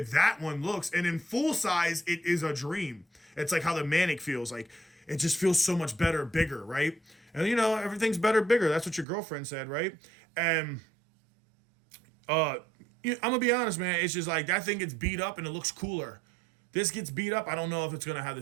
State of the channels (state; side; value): drops out; left; at 9.1 s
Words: that one looks. And in full size, it is a dream. It's like how the Manic feels. Like it just feels so much better, bigger, right? And you know, everything's better, bigger. That's what your girlfriend said, right? And I'm gonna be honest, man. It's just like that thing gets beat up and it looks cooler. This gets beat up. I don't know if it's gonna have